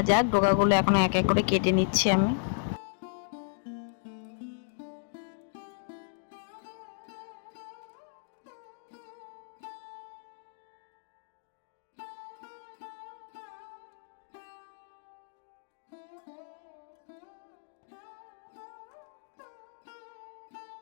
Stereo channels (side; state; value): right; silent; digital silence